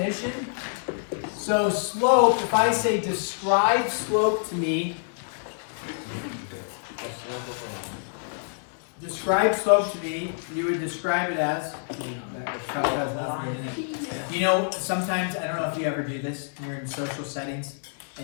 So slope, if I say describe slope to me, describe slope to me, you would describe it as, you know, sometimes, I don't know if you ever do this, you're in social settings,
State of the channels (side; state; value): right; silent; digital silence